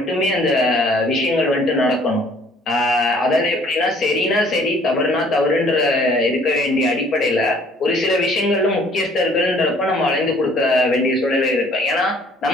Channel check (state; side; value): normal; both; correlation 0.58